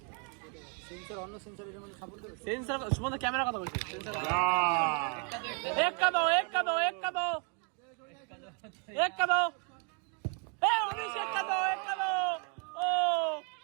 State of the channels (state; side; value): quieter; left; 38.4 dB